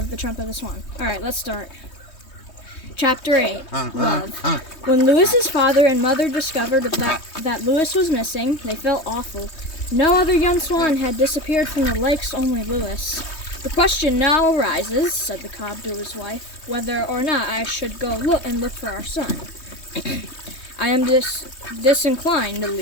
the Trumpet of the Swan. Alright, let's start. Chapter 8, Love. When Lewis's father and mother discovered that Lewis was missing, they felt awful. No other young swan had disappeared from the lakes, only Lewis. The question now arises, said the cob to his wife, whether or not I should go look for our son. I am disinclined to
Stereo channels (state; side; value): late; right; 3.2 ms